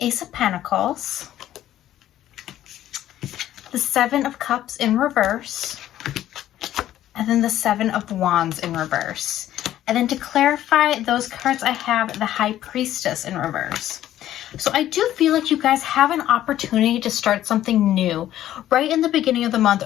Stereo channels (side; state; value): right; quieter; 12.7 dB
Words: of Pentacles, the Seven of Cups in reverse, and then the Seven of Wands in reverse. And then to clarify those cards, I have the High Priestess in reverse. So I do feel like you guys have an opportunity to start something new right in the beginning of the month,